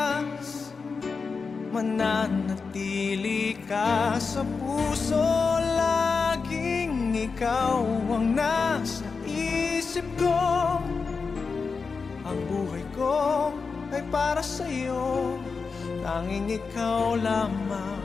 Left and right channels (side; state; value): right; quieter; 4.9 dB